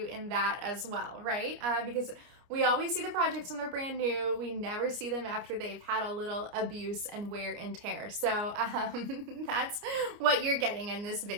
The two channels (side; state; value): left; late; 29 ms